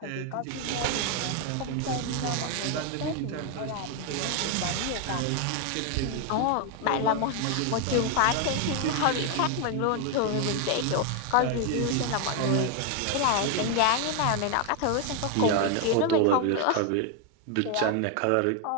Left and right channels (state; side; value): different; both; correlation 0.01